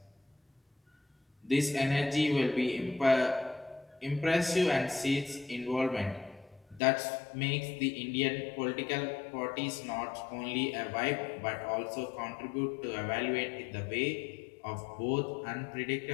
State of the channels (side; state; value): right; drops out; at 6.8 s